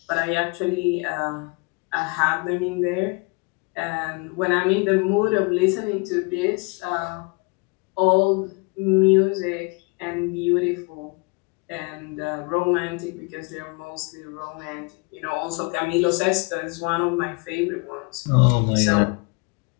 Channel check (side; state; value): right; quieter; 29.7 dB